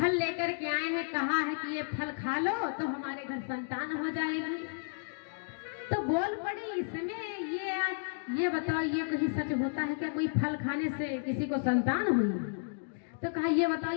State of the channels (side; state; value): right; silent; digital silence